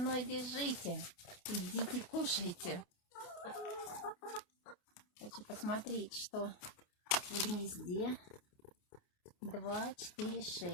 бежите? Идите кушайте. Хочу посмотреть, что в гнезде. 2, 4,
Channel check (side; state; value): right; late; 28 ms